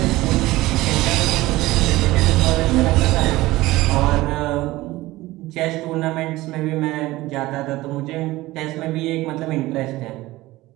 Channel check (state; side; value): quieter; left; 18.4 dB